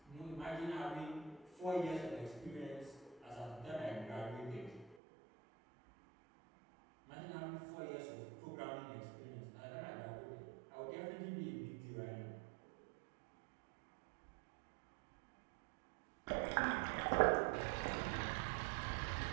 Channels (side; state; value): left; drops out; at 5.0 s